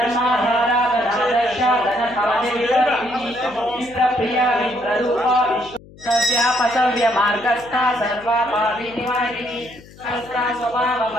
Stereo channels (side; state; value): left; noise; hum, 22 dB below the sound